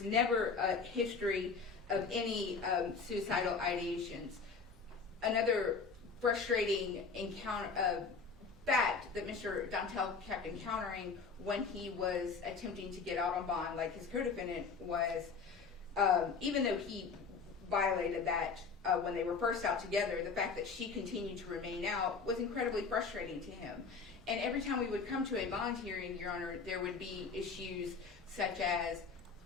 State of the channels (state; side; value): quieter; right; 5.0 dB